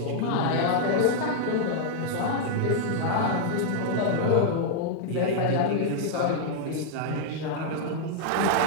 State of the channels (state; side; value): different; both; correlation -0.01